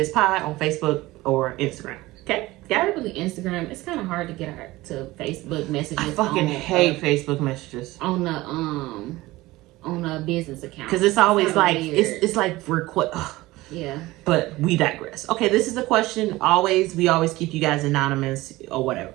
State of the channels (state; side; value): quieter; left; 19.0 dB